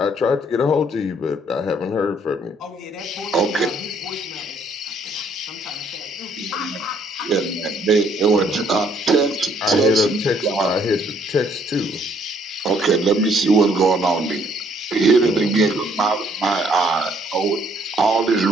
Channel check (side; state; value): both; normal; correlation 0.66